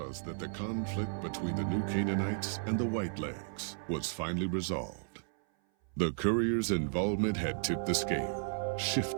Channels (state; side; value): silent; left; 55 dB below the other